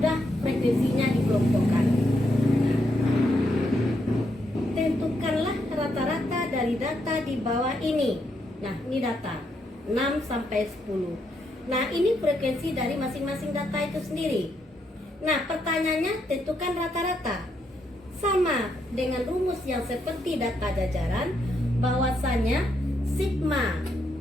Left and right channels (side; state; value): both; normal; correlation 0.78